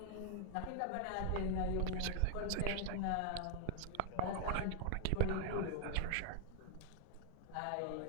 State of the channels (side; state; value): both; different; correlation 0.00